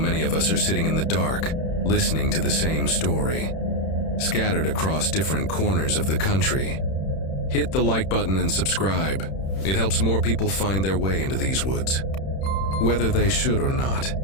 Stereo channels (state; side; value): late; right; 31 ms